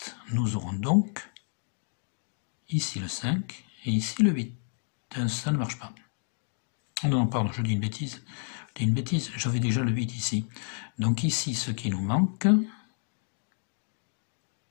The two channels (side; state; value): right; silent; digital silence